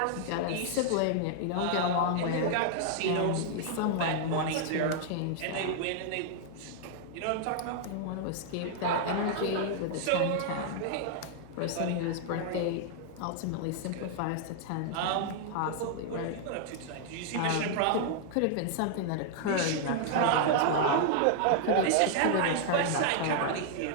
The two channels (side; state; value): both; different; correlation -0.01